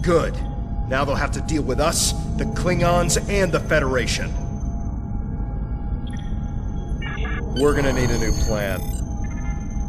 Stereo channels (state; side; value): identical; both; correlation 1.00